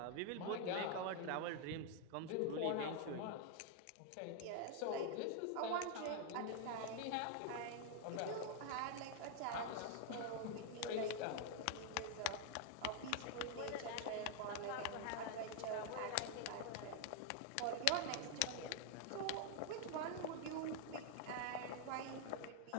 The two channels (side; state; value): both; different; correlation 0.00